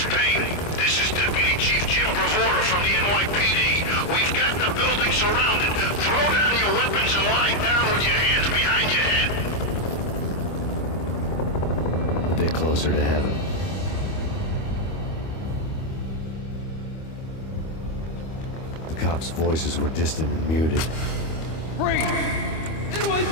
Payne, this is Deputy Chief Jim Bravura from the NYPD. We've got the building surrounded. Throw down your weapons and lie down with your hands behind your head. A bit closer to heaven. The cops' voices were distant and muted. Freeze!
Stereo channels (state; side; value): late; right; 25 ms